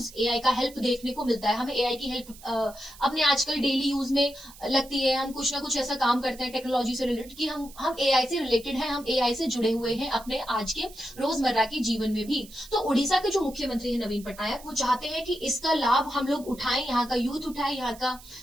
एआई का हेल्प देखने को मिलता है। हमें एआई की हेल्प अपने आजकल डेली यूज में लगती है। हम कुछ ना कुछ ऐसा काम करते हैं टेक्नोलॉजी से रिलेटेड कि हम एआई से रिलेटेड हैं, हम एआई से जुड़े हुए हैं अपने आज के रोजमर्रा के जीवन में भी। तो उड़ीसा के जो मुख्यमंत्री है नवीन पटनायक, वो चाहते हैं कि इसका लाभ हम लोग उठाएं, यहाँ का यूथ उठाए, यहाँ का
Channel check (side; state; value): right; noise; hiss, 20 dB below the sound